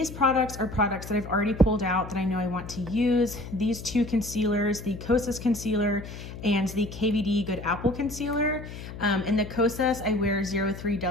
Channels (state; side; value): noise; left; hum, 11 dB below the sound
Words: products are products that I've already pulled out that I know I want to use. These two concealers, the Kosas concealer and the KVD Good Apple concealer. In the Kosas, I wear